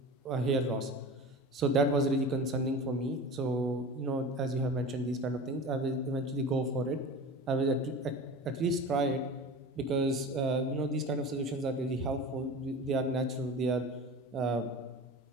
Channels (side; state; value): both; normal; correlation 0.33